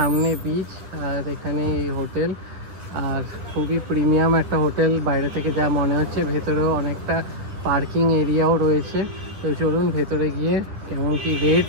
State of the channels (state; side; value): late; left; 10 ms